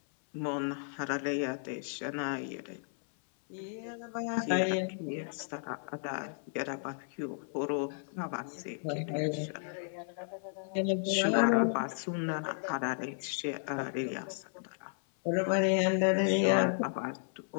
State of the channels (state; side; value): silent; right; 55 dB below the other